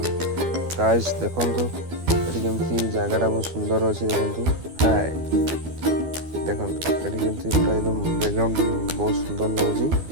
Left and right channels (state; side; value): late; left; 12 ms